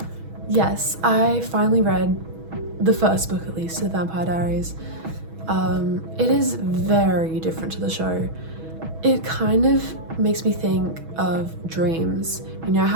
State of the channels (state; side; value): late; left; 6.2 ms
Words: Yes, I finally read the first book, at least, to The Vampire Aries. It is very different to the show. It kind of makes me think of dreams. You know